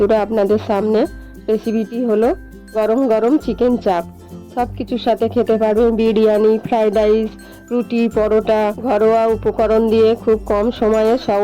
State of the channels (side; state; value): both; identical; correlation 1.00